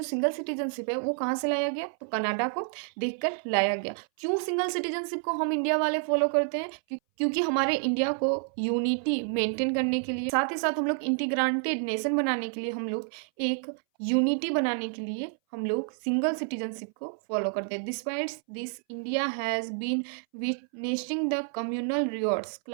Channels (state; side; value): silent; left; 59 dB below the other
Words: सिंगल सिटीजनशिप है वो कहाँ से लाया गया? तो कनाडा को देखकर लाया गया। क्यों सिंगल सिटीजनशिप को हम इंडिया वाले फॉलो करते हैं? क्योंकि हमारे इंडिया को यूनिटी मेंटेन करने के लिए, साथ ही साथ हम लोग इंटीग्रेटेड नेशन बनाने के लिए, हम लोग एक यूनिटी बनाने के लिए हम लोग सिंगल सिटीजनशिप को फॉलो करते हैं। Despite this India has been witnessing the communal rewards,